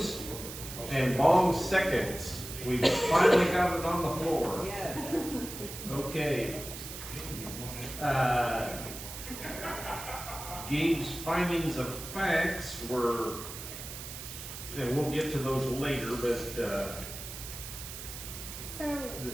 and Bong seconds. We've finally got it on the floor. Yes. Okay. Gabe's findings of facts were, and we'll get to those later, but, So,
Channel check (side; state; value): right; noise; hiss, 10 dB below the sound